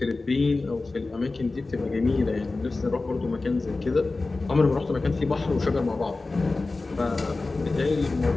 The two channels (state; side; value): quieter; right; 3.4 dB